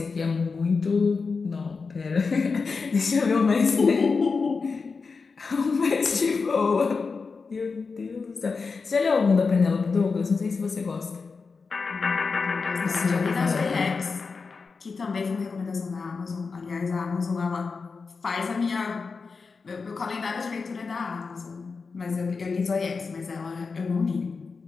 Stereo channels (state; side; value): quieter; right; 4.7 dB